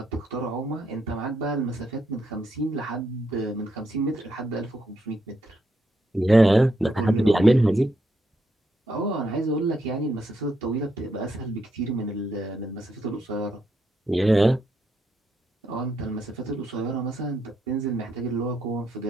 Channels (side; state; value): both; normal; correlation 0.79